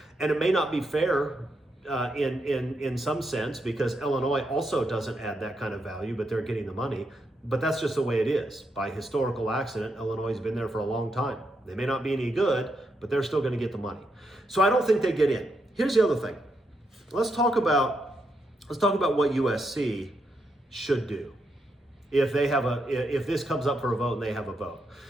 And it may not be fair in some sense, because Illinois also doesn't add that kind of value, but they're getting the money. But that's just the way it is. By historical accident, Illinois has been there for a long time. They may not be any good, but they're still going to get the money. So I don't think they get in. Here's the other thing. Let's talk about what USC should do if this comes up for a vote and they have a vote.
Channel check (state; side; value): normal; both; correlation 0.81